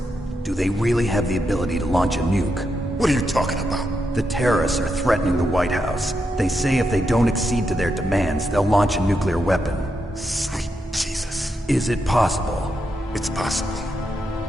Do they really have the ability to launch a nuke? What are you talking about? The terrorists are threatening the White House. They say if they don't accede to their demands, they'll launch a nuclear weapon. Sweet Jesus. Is it possible? It's possible.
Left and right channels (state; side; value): normal; both; correlation 0.84